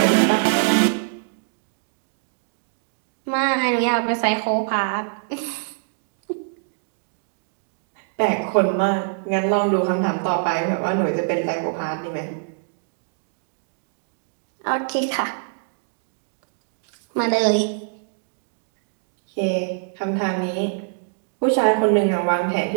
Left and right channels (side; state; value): left; silent; digital silence